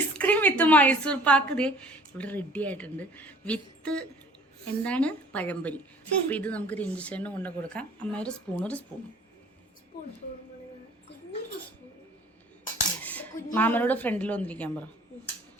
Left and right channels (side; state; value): both; normal; correlation 0.52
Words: with Mysore pak ദേ ഇവിടെ റെഡി ആയിട്ടുണ്ട്. വിത്ത് എന്താണ് പഴംപൊരി. അപ്പം ഇത് നമുക്ക് രഞ്ജിച്ചേട്ടന് കൊണ്ട് കൊടുക്കാം. അമ്മ ഒരു സ്പൂൺ മാമനോട് ഫ്രണ്ടിൽ വന്നിരിക്കാൻ പറ.